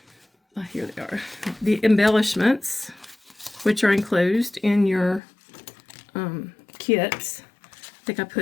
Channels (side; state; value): right; drops out; at 5.2 s